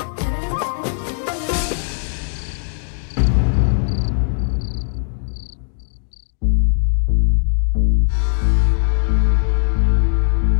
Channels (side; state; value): right; silent; 67 dB below the other